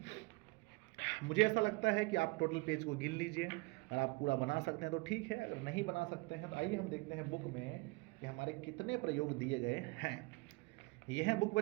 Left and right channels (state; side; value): quieter; left; 26.2 dB